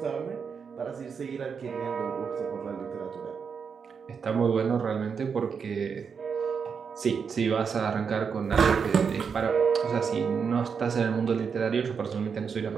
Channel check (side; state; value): left; quieter; 6.2 dB